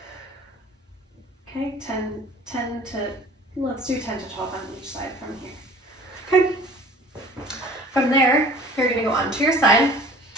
Okay, let's do 10 to 12 on each side from here. Okay, from there, you're going to go onto your side.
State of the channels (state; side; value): normal; both; correlation 0.48